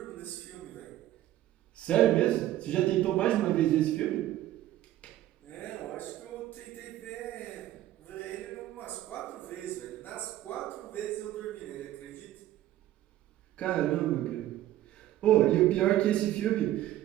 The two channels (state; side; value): quieter; left; 13.9 dB